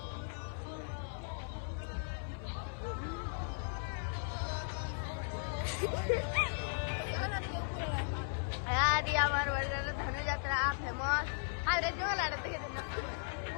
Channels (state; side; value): silent; right; 53 dB below the other